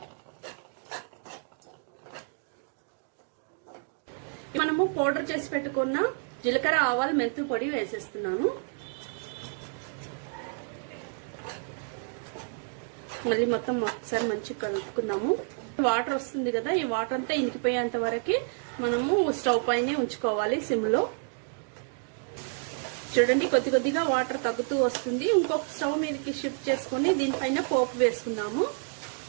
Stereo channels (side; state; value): left; silent; 56 dB below the other